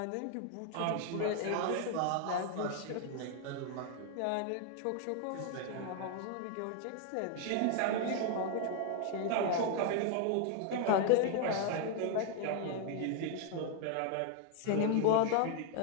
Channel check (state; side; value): different; both; correlation 0.00